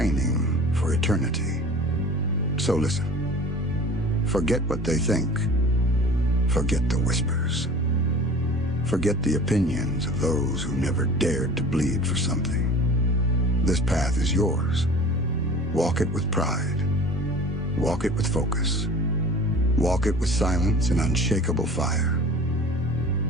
for eternity. So listen. Forget what they think. Forget the whispers. Forget the opinions of those who never dared to bleed for something. This path is yours. Walk it with pride. Walk it with focus. Walk it with silence and unshakable fire.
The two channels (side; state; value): both; normal; correlation 0.42